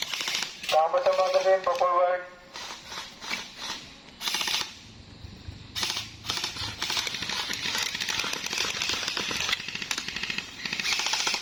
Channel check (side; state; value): both; identical; correlation 1.00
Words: Kampo sa magazine, pa-forward.